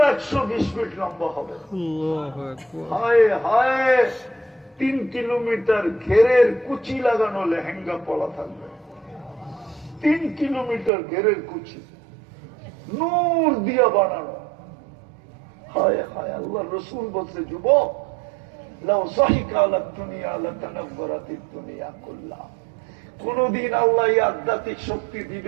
120 ফিট লম্বা হবে। হায় হায়, 3 কিলোমিটার ঘেরের কুচি লাগানো লেহেঙ্গা পলা থাকবে। 3 কিলোমিটার ঘেরের কুচি, নূর দিয়া বানানো। হায় হায়, আল্লাহ রসুল বলছে, যুবক লাউ যাহিকা আলা দুনিয়া লাতানাব্বারাতিদ দুনিয়া কুল্লাহা। কোনদিন আল্লাহ এই আধ্যাত্মিক শক্তি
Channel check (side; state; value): left; drops out; at 10.9 s